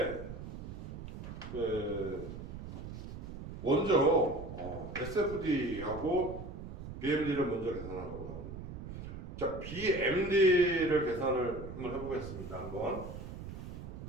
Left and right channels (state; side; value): noise; right; rumble, 9 dB below the sound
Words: 먼저 SFD하고 BMD를 먼저 계산하고 나오는데, 자, BMD를 계산을 한번 해보겠습니다. 한번